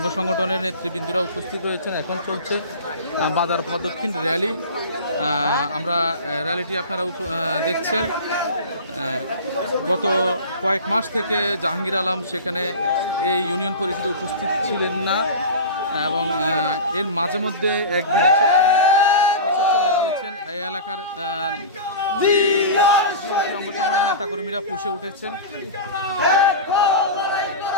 সংগঠনের নেতৃবৃন্দরা উপস্থিত রয়েছেন। এখন চলছে বাজার প্রদক্ষিণ র্যালি। আমরা র্যালিটি আপনারা দেখছেন। গত কয়েক মাস থেকে জাহাঙ্গীর আলম সেখানে এই ইউনিয়ন পরিষদে উপস্থিত ছিলেন না এবং এর মাঝে মধ্যে একদিন এসে চলে গিয়েছেন। এই এলাকার অঙ্গ সংগঠনের নেতাকর্মীরা পুষে উঠেছেন।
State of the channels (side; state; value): both; inverted; correlation -0.31